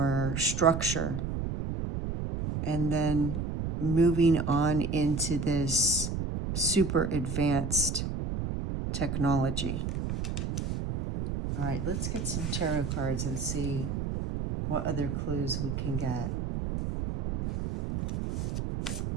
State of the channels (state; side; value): noise; right; rumble, 3 dB below the sound